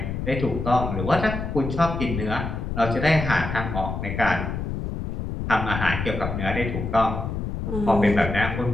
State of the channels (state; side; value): noise; left; rumble, 4 dB below the sound